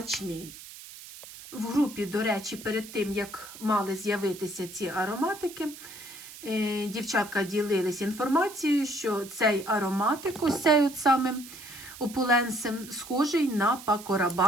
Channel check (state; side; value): noise; right; hiss, 15 dB below the sound